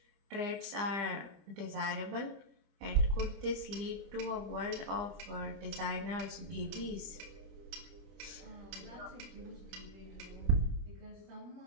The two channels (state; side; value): late; left; 24 ms